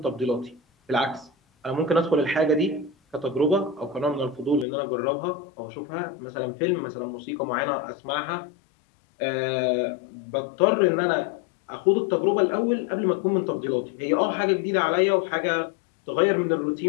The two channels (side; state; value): right; drops out; at 4.7 s